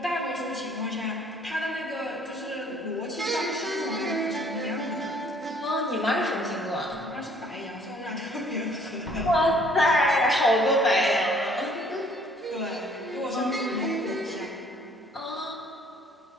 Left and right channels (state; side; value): normal; both; correlation 0.59